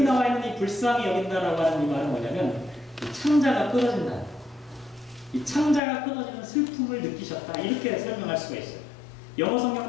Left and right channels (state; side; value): drops out; right; at 5.8 s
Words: 나와 있는 이 불쌍히 여긴다라고 하는 이 말은 뭐냐면 이 창자가 끊어진다. 이 창자가 끊어지는 슬픔을 느끼셨다. 이렇게 설명할 수가 있어요. 영어